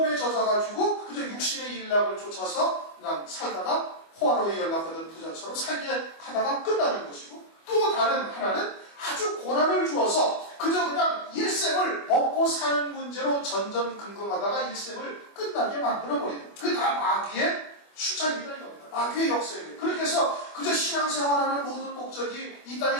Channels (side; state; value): right; late; 25 ms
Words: 젖어가지고 그저 육신의 일락을 쫓아서 그냥 살다가 호화로에 연락하던 부자처럼 살게 하다가 끝나는 것이고 또 다른 하나는 아주 고난을 주어서 그저 그냥 일생을 먹고 사는 문제로 전전긍긍하다가 일생을 끝나게 만들어버리는 거예요. 그게 다 마귀의 수작이다 이겁니다. 마귀의 역사예요. 그렇게 해서 그저 신앙생활하는 모든 목적이 이 땅에